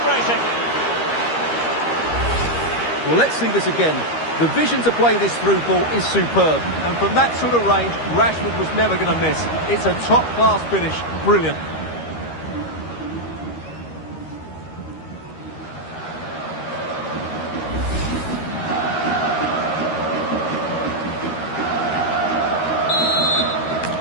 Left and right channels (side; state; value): right; late; 13 ms